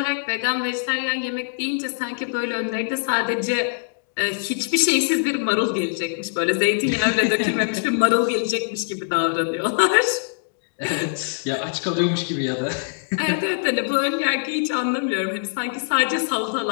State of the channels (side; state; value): right; silent; digital silence